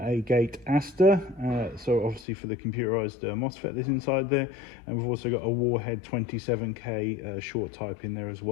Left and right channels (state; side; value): drops out; right; at 2.2 s